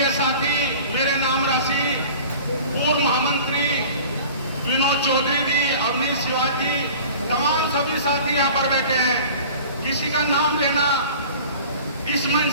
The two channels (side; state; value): both; inverted; correlation -0.43